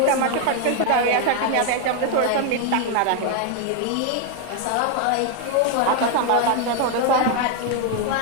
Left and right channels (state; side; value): different; both; correlation 0.01